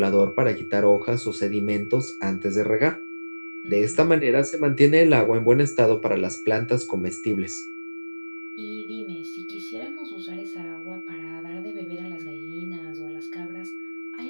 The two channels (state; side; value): inverted; both; correlation -1.00